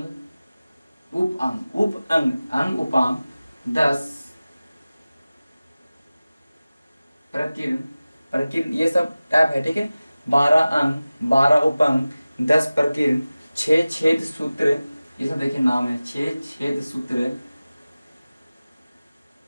अंग उपांग, 10 प्रकीर्णन, ये सब टाइप है, ठीक है। 12 अंग, 12 उपांग, 10 प्रकीर्णन, 6 छेद सूत्र, ये सब देखिए नाम है, 6 छेद सूत्र,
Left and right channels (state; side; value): inverted; both; correlation -0.97